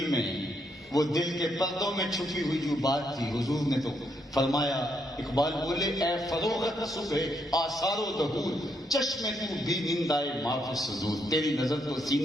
میں, وہ دل کے پردوں میں چھپی ہوئی جو بات تھی, حضور نے تو فرمایا, اقبال بولے اے فروغت صبح آثار و ظہور, چشمے تو بھی نندائے معاف صدور, تیری نظر تو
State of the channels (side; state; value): both; normal; correlation 0.76